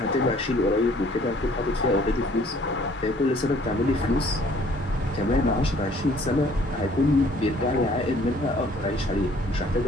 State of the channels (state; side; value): normal; both; correlation 0.58